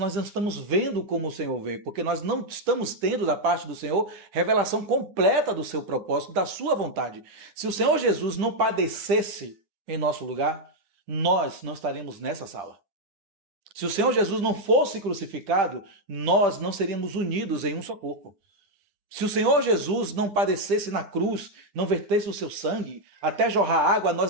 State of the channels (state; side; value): late; left; 10 ms